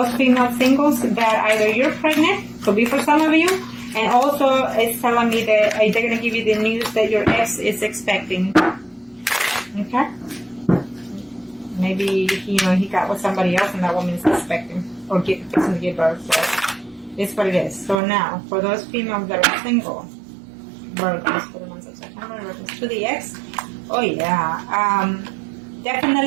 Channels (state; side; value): drops out; left; at 17.9 s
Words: female singles that either you're pregnant, could be for some of you, and also it's telling me that they're going to give you the news that your ex is expecting. Okay? Maybe, he got with somebody else and that woman is expecting or fixing to give birth. So it's what it is. So now, for those females that are single, Virgos for the month of September, in reference to the ex, oh yeah,